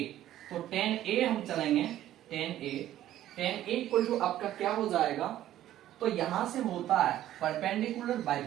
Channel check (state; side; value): quieter; left; 13.0 dB